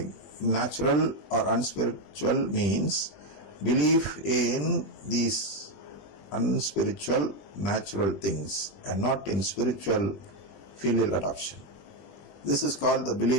natural or unspiritual means belief in these unspiritual natural things and not in spiritual filial adoption. This is called the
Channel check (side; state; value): right; late; 21 ms